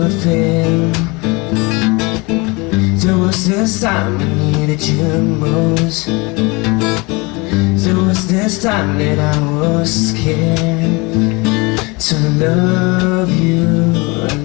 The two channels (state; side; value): quieter; right; 26.7 dB